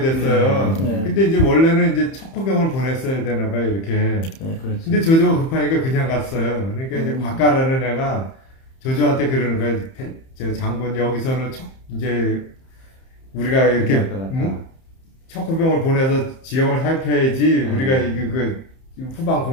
됐어요. 근데 이제 원래는 이제 척후병을 보냈어야 되나 봐요, 이렇게. 근데 조조가 급하니까 그냥 갔어요. 그러니까 이제 곽가라는 애가 조조한테 그러는 거예요. 저 장군 여기서는 이제 우리가 이렇게 척후병을 보내서 지형을 살펴야지 우리가 그 후방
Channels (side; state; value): right; late; 31 ms